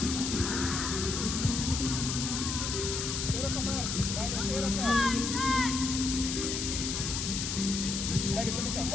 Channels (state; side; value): noise; left; hiss, 2 dB below the sound